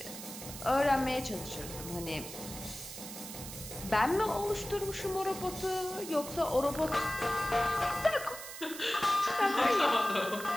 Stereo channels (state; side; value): noise; right; hiss, 11 dB below the sound